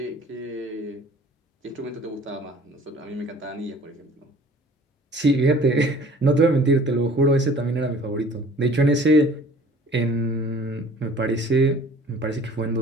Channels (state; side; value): normal; both; correlation 0.50